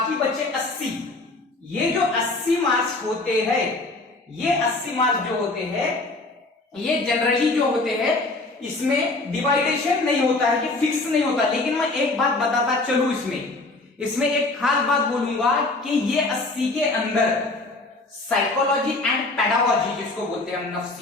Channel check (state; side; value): quieter; right; 3.2 dB